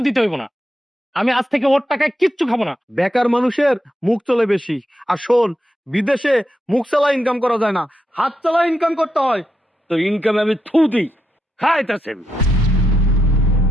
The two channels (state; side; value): normal; both; correlation 0.84